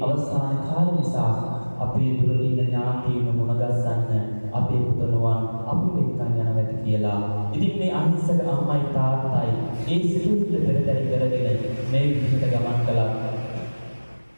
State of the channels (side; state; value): both; inverted; correlation -1.00